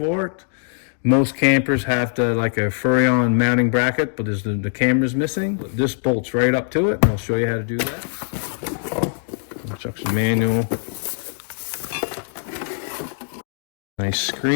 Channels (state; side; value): silent; right; digital silence